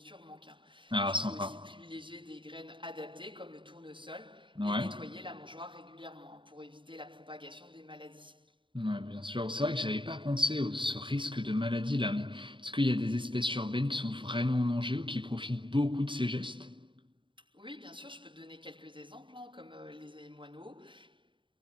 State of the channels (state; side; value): late; left; 0.24 ms